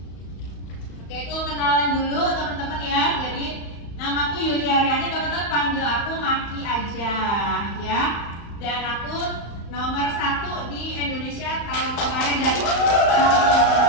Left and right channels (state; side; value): late; right; 35 ms